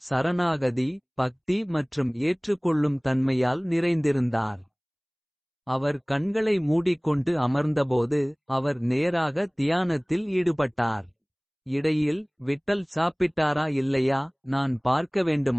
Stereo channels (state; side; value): identical; both; correlation 1.00